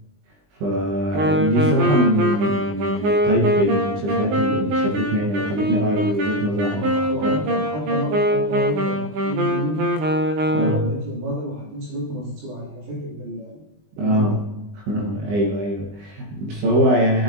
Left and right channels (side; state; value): left; late; 20 ms